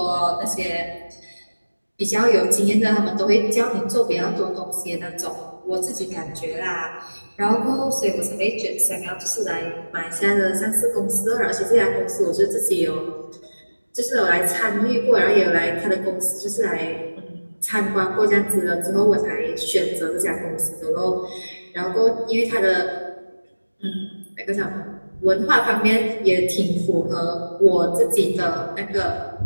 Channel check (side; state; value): both; inverted; correlation -1.00